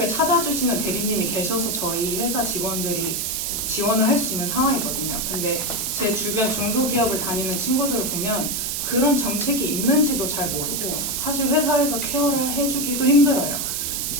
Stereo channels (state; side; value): noise; right; hiss, 1 dB below the sound